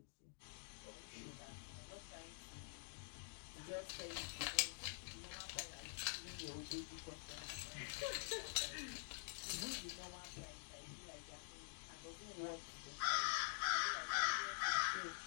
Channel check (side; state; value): right; silent; digital silence